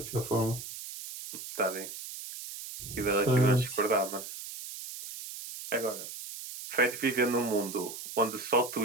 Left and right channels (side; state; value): right; noise; hiss, 10 dB below the sound